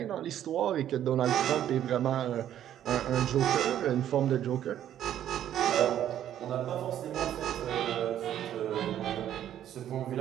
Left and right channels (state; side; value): quieter; left; 11.1 dB